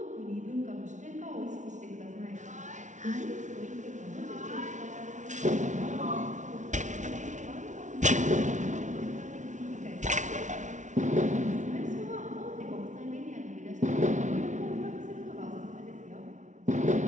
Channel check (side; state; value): left; late; 0.36 ms